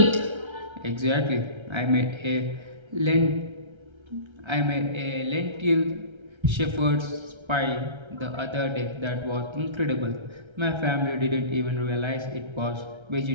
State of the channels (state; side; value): late; left; 1.3 ms